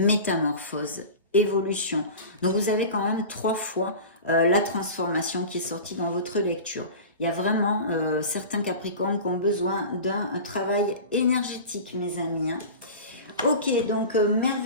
évolution. Donc vous avez quand même 3 fois la transformation qui est sortie dans votre lecture. Il y a vraiment certains capricornes qui ont besoin d'un travail énergétique, mes amis. Ok, donc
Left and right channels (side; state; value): both; inverted; correlation -0.33